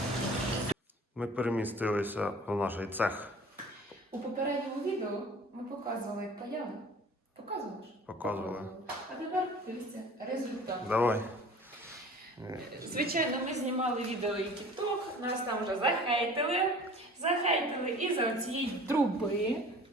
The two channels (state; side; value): normal; both; correlation 0.45